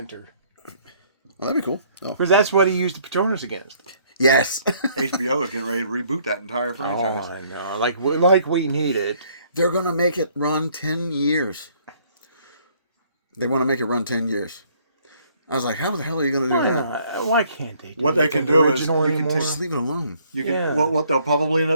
Well, that'd be cool. Oh. Because that's what he used the Patronus against. Yes. HBO is getting ready to reboot that entire Oh, franchise. I know. Like we need it. They're going to make it run 10 years. They want to make it run 10 years. I was like, how the hell are you going to do Why that? not? Why can't they do What they like can the do is original you can anymore? Just leave it alone. You can Yeah. what they'll probably end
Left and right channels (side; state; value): both; inverted; correlation -0.63